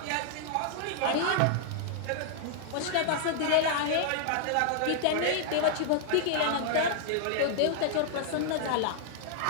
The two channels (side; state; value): both; different; correlation -0.01